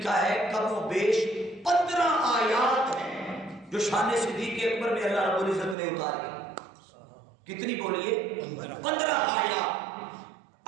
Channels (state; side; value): drops out; left; at 5.8 s